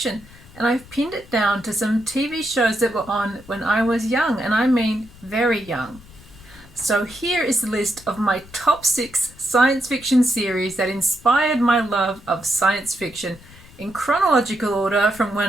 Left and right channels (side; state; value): left; noise; rumble, 22 dB below the sound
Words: and I've pinned it down to some TV shows that were on when I was young, and I mean very young. So here is the list of my top 6 science fiction series that inspired my love of science fiction in chronological order from